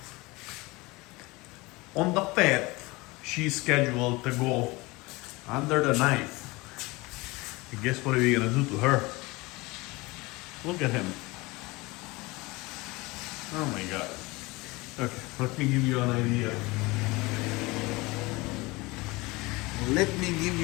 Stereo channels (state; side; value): quieter; right; 23.1 dB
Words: On the 5th, she's scheduled to go under the knife. And guess what are we gonna do to her? Look at him. Oh my god. Okay, let me give you an idea. Let me give